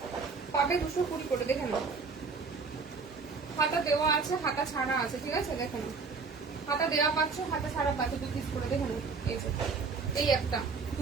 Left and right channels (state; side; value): quieter; left; 4.8 dB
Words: পাবে 220 করে, দেখে নাও হাতা দেওয়া আছে, হাতা ছাড়া আছে, ঠিক আছে দেখে নাও। হাতা দেওয়া পাচ্ছ, হাতা ছাড়া পাচ্ছ 2 পিস করে, দেখে নাও। এই একটা